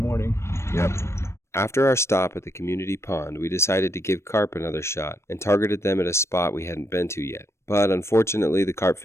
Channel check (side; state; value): right; late; 0.13 ms